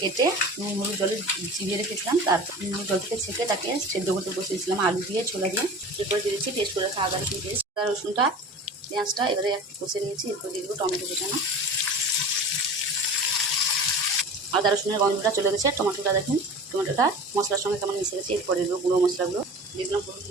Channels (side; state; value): both; normal; correlation 0.37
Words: কেটে নুন হলুদ জলে চিবিয়ে রেখেছিলাম। তারপর নুন জল থেকে ছেঁকে তাকে সেদ্ধ করতে বসিয়েছিলাম আলু দিয়ে, ছোলা দিয়ে। এরপরে দিয়েছি পেস্ট করে রাখা আদা রসুন পেস্ট, আদা রসুনটা পেঁয়াজটা এবারে একটু কষে নিয়েছি। এরপর দিয়ে দেবো টমেটো কুচানো। আদা রসুনের গন্ধটা চলে গেছে। টমেটোটা দেখুন, টমেটোটা মশলার সঙ্গে কেমন মিশে গেছে। এরপরে দেবো গুঁড়ো মশলাগুলো। দিয়ে দিলাম হলুদ